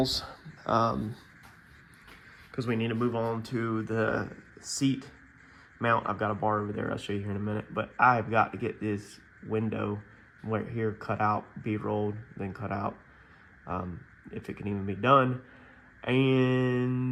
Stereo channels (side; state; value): both; identical; correlation 1.00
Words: because we need to move on to the seat mount. I've got a bar over there. I'll show you here in a minute. But I've got to get this window right here cut out, bead rolled, then cut out, if it can even be done.